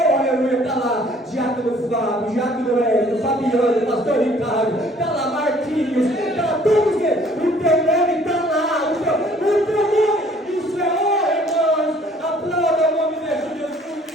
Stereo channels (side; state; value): both; normal; correlation 0.57